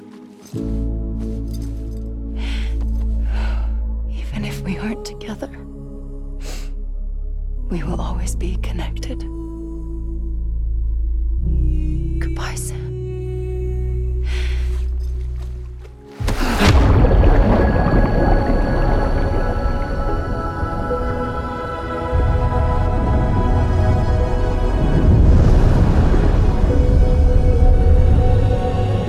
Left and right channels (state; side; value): identical; both; correlation 1.00